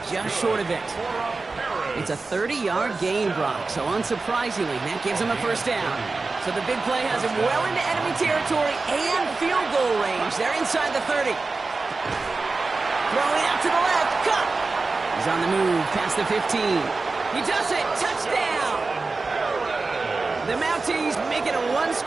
just short of it. It's a 30-yard gain, Brock. So unsurprisingly, that gives him a first down. So the big play has him well into enemy territory and field goal range. They're inside the 30. Throwing out to the left. Cut. He's on the move past the 15. He does it. Touchdown. The Mounties make it a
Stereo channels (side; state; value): left; quieter; 3.8 dB